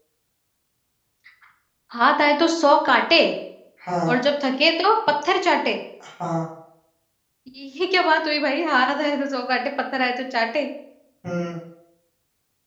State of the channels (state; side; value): identical; both; correlation 1.00